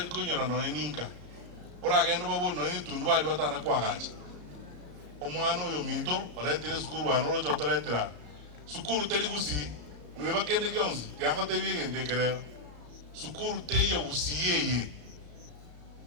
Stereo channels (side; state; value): left; late; 34 ms